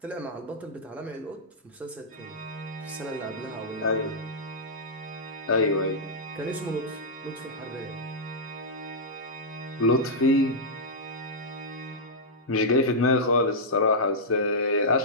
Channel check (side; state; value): both; normal; correlation -0.09